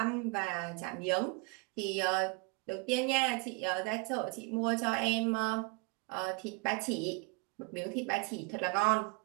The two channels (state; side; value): quieter; left; 29.7 dB